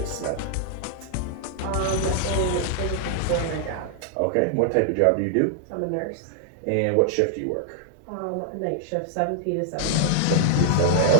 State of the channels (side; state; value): both; different; correlation 0.00